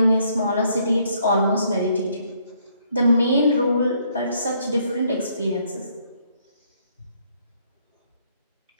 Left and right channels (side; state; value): both; inverted; correlation -0.69